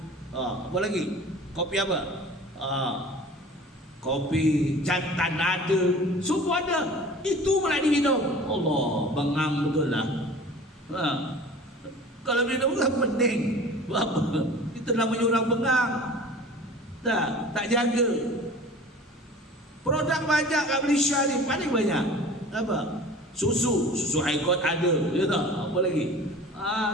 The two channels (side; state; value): both; normal; correlation 0.42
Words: Apa lagi? Kopi apa? Kopi jantan ada. Semua ada. Itu pula diminum. Allah, bengang betul lah. Kalau minum kan pening. Apa? Itu namanya orang bengang. Tak jaga. Produk banyak kat Malaysia ni, paling banyak. Apa? Susu Haikot ada. Ya tak? Apa lagi?